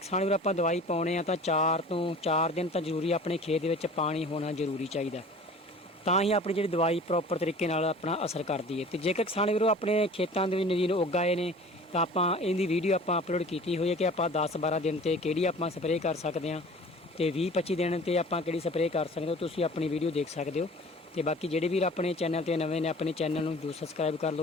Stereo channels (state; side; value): normal; both; correlation 0.44